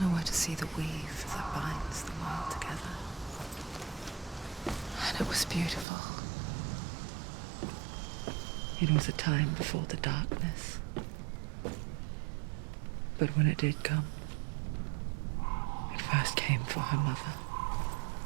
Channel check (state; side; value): drops out; left; at 5.9 s